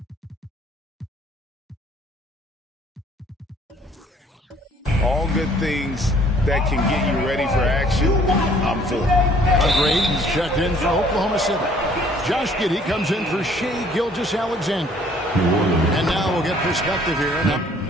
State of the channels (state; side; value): normal; both; correlation 0.58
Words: All good things that can get you ready for action, I'm for. Graves checked in for Oklahoma City. Josh Giddey comes in for Shai Gilgeous-Alexander. And now we'll get perspective here. Now,